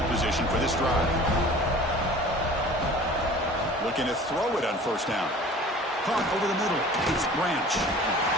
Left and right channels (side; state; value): both; normal; correlation 0.44